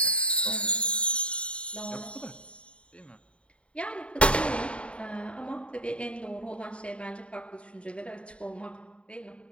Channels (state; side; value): late; right; 0.059 ms